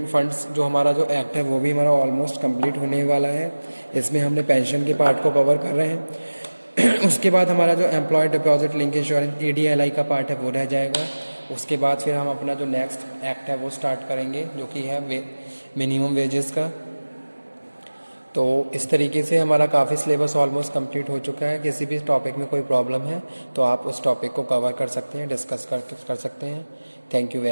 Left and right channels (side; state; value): both; inverted; correlation -1.00